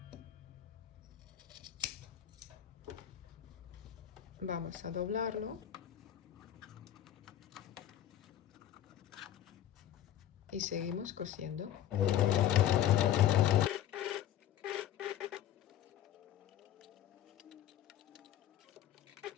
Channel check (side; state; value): right; quieter; 11.4 dB